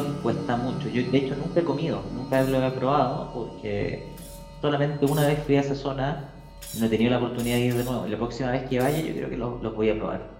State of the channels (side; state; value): both; identical; correlation 1.00